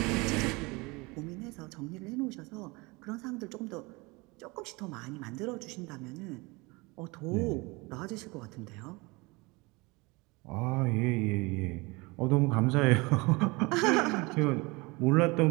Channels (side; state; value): left; quieter; 25.2 dB